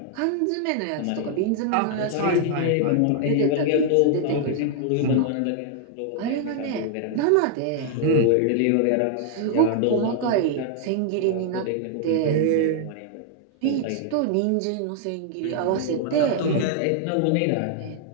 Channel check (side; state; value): both; different; correlation 0.00